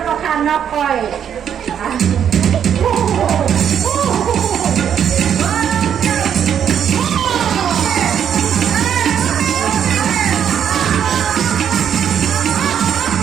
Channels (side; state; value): left; quieter; 8.8 dB